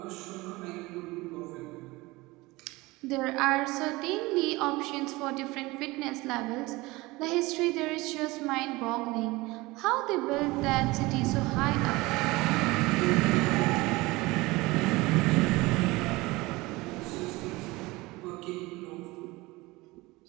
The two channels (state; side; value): quieter; left; 21.7 dB